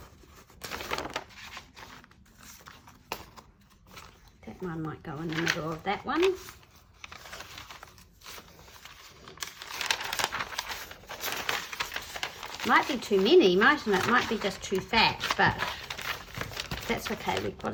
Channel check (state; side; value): identical; both; correlation 1.00